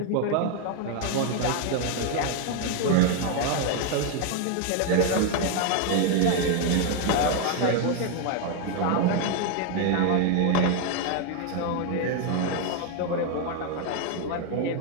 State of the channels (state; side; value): different; both; correlation 0.01